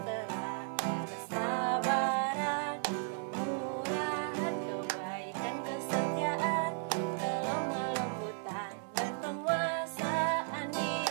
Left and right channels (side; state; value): left; silent; 54 dB below the other